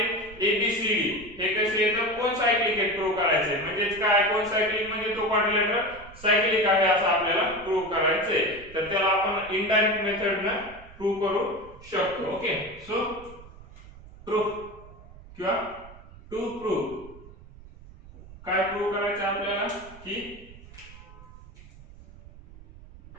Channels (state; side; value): noise; right; rumble, 19 dB below the sound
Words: ए बी सी डी हे कसे येतात, कोन सायक्लिक आहे प्रूव्ह करायचे. म्हणजे काय, कोन सायक्लिक म्हणजे तो क्वाड्रिलॅटरल सायक्लिक आहे असं आपल्याला प्रूव्ह करायचंय. तर त्याला आपण इनडायरेक्ट मेथडने प्रूव्ह करू शकतो. ओके, सो प्रूफ किंवा टू प्रूव्ह काय प्रूव्ह करायचं आपल्याला, की